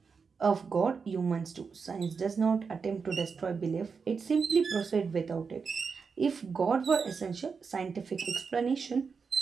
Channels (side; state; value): left; quieter; 5.4 dB